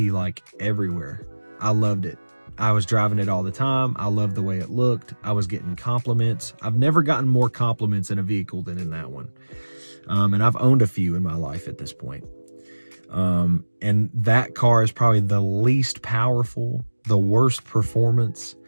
like everywhere. I loved it. I was driving it all the time. I loved the way it looked. I was getting compliments. I've never gotten more compliments in a vehicle than in that one. And I've owned a few in my life at this point. And that car is probably the least powerful, the worst performance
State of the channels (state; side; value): inverted; both; correlation -1.00